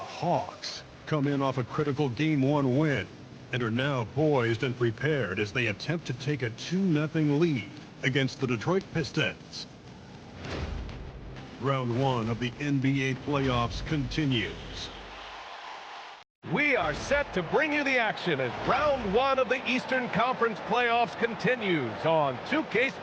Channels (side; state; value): both; identical; correlation 1.00